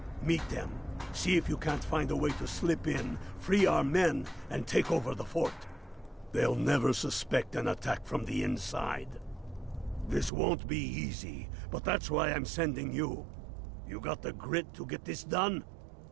Meet them. See if you can't find a way to slip in, free our men, and take over the fort. They'll never suspect an attack from the inside. This won't be easy, but that's why I'm sending you. You got the grit to get this done?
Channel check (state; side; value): drops out; left; at 10.3 s